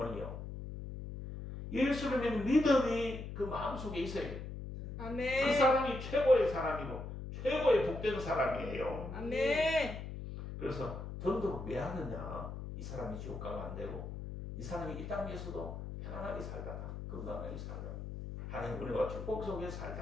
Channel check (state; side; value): noise; left; hum, 8 dB below the sound